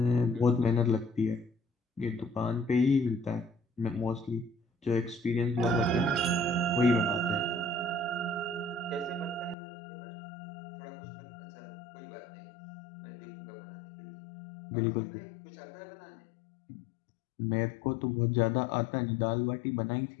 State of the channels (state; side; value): drops out; right; at 9.6 s